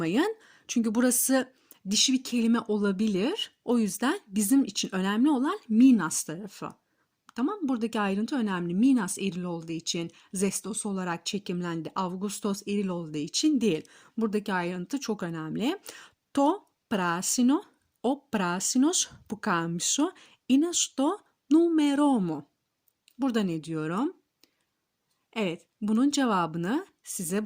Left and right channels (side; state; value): both; identical; correlation 1.00